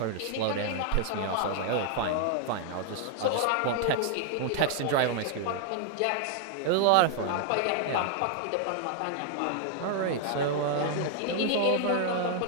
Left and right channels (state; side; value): different; both; correlation 0.00